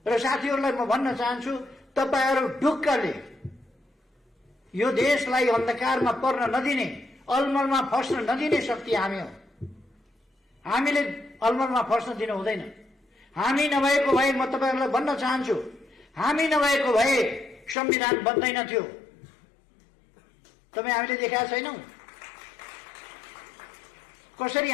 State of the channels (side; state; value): right; drops out; at 17.8 s